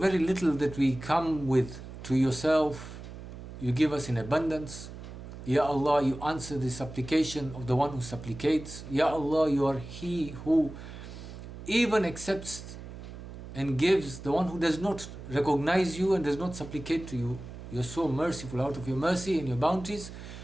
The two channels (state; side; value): noise; right; hum, 12 dB below the sound